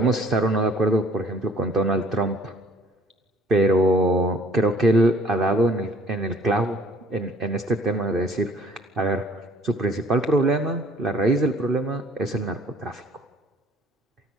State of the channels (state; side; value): normal; both; correlation 0.55